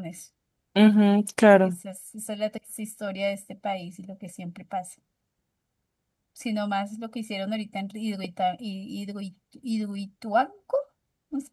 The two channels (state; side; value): identical; both; correlation 1.00